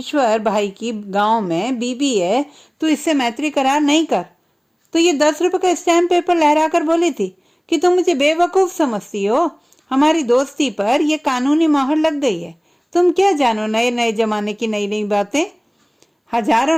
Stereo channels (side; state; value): both; identical; correlation 1.00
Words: भाई की गांव में बीबी है, तू इससे मैत्री करार नहीं कर। तो ये 10 रुपए का स्टैम्प पेपर लहरा कर बोली थी कि तुम मुझे बेवकूफ समझती हो। हमारी दोस्ती पर यह कानूनी मोहर लग गई है। तुम क्या जानो नए नए जमाने की नई नई बातें।